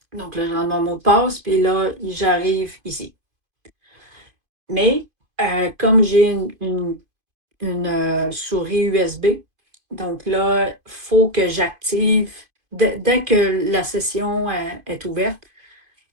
Donc là, je rentre mon mot de passe, puis là, j'arrive ici. Mais comme j'ai une souris USB, donc là, il faut que j'active, dès que la session est ouverte,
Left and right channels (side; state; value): left; late; 2.5 ms